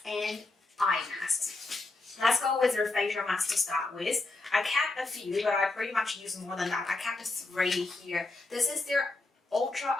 and eye masks. Let's go with their facial mask to start with. I kept a few, but I pretty much use more than that. I kept 3 here. This is their Ultra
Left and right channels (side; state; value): right; quieter; 3.2 dB